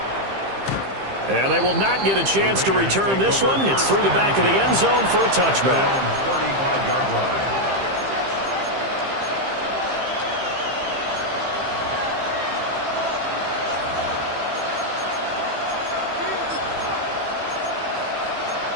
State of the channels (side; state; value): left; late; 15 ms